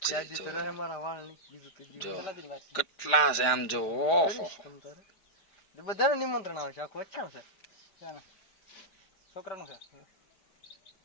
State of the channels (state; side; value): late; right; 5.0 ms